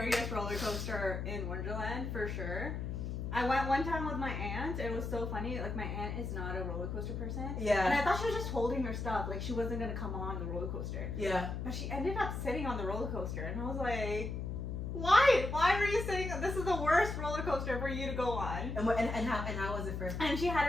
roller coaster in Wonderland for sure. I went one time with my aunt. It was so funny. Like, my aunt is not a roller coaster person. Yeah. And I thought she was just holding her stuff. Like, she wasn't going to come on the roller coaster. Yeah. But she ended up sitting on the roller coaster. And I was like, why? Why were you sitting? This is the worst roller coaster for you to go on. And how was it for? And she had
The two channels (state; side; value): noise; left; hum, 4 dB below the sound